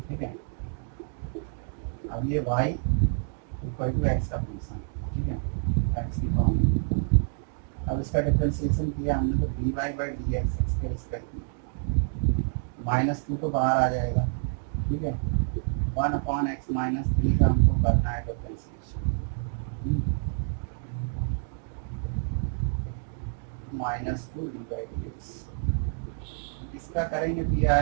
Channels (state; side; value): silent; left; 59 dB below the other